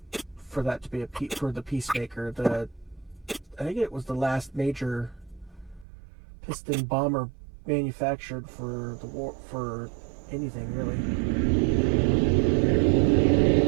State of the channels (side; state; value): left; drops out; at 5.9 s